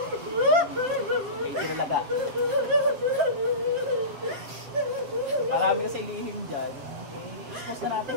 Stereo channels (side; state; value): left; late; 7.6 ms